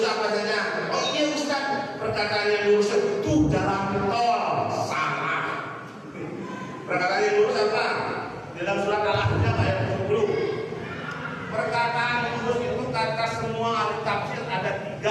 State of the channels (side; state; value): both; identical; correlation 1.00